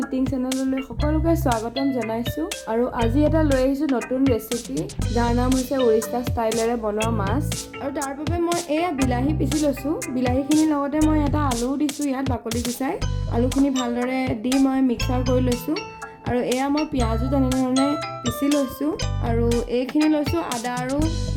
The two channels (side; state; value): both; identical; correlation 1.00